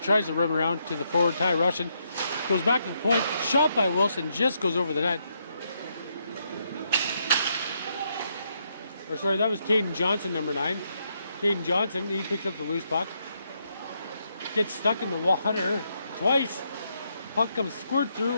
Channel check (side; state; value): both; inverted; correlation -0.78